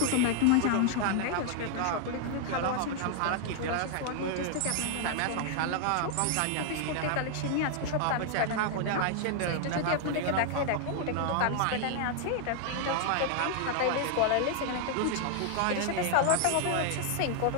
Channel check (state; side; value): different; both; correlation 0.00